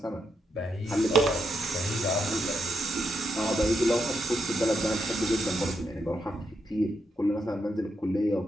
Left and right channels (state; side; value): normal; both; correlation 0.81